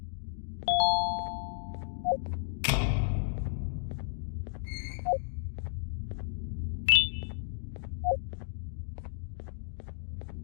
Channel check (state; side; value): silent; right; digital silence